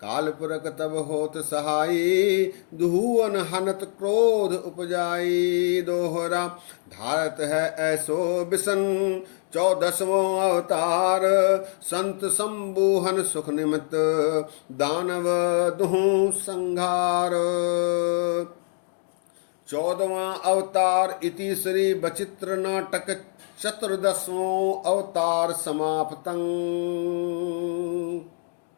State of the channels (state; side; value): silent; right; 62 dB below the other